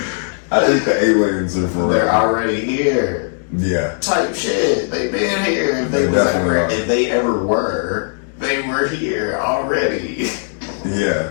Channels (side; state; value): right; silent; digital silence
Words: I think the aliens are for They're real. already here. Yeah. Type shit. They've been here. If They definitely are. if they ever were, they were here already.